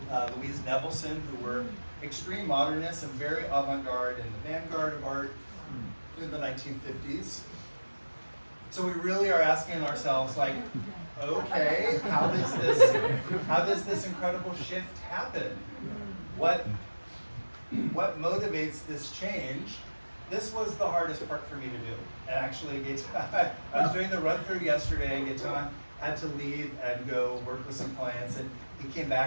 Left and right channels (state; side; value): inverted; both; correlation -1.00